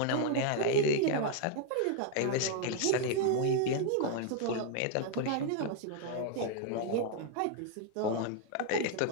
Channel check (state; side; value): different; both; correlation 0.00